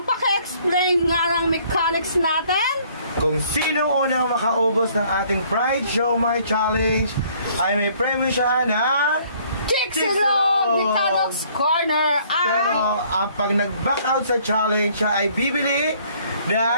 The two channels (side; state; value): both; inverted; correlation -0.60